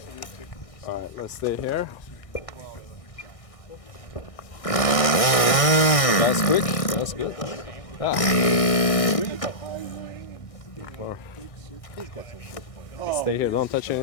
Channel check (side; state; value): right; late; 1.6 ms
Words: Alright, let's stay here. That's quick, that's good. Ah. Stay here, don't touch